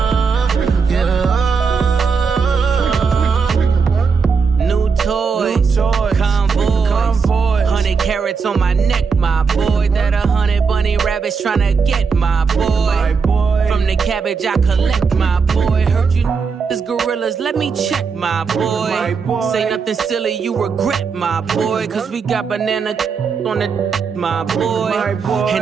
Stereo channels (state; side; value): quieter; left; 5.4 dB